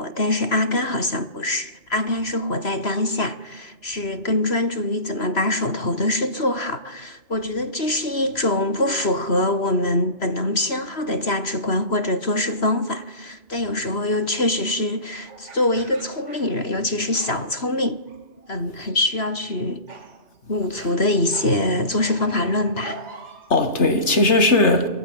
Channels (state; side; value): late; right; 3.0 ms